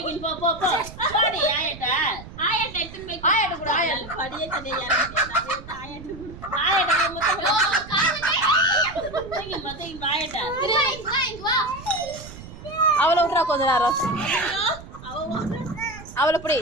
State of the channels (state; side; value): noise; right; rumble, 15 dB below the sound